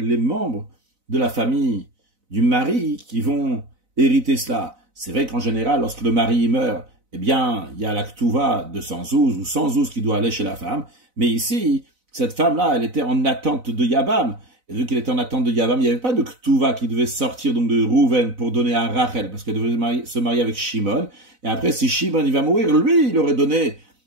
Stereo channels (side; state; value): left; late; 4.0 ms